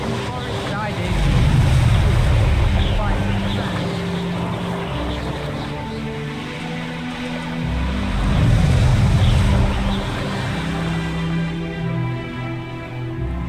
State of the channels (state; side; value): identical; both; correlation 1.00